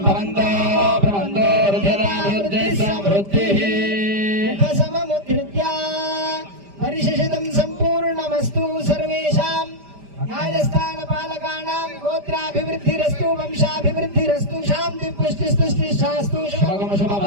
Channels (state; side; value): late; left; 5.0 ms